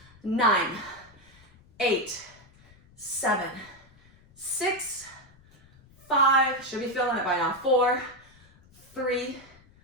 9, 8, 7, 6, 5, should be feeling it by now. 4, 3,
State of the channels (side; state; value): left; noise; rumble, 27 dB below the sound